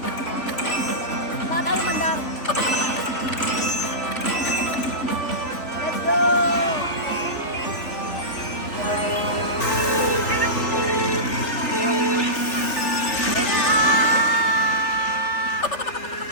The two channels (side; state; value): right; late; 3.4 ms